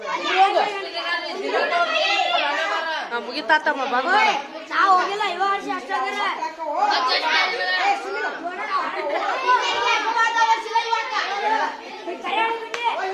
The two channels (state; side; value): identical; both; correlation 1.00